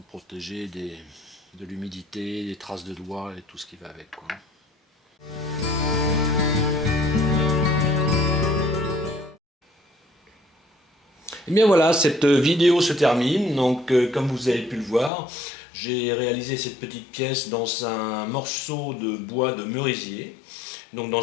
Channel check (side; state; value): right; drops out; at 15.1 s